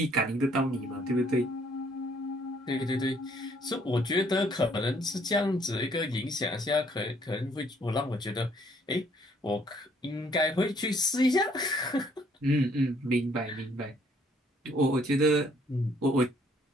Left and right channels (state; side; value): normal; both; correlation 0.64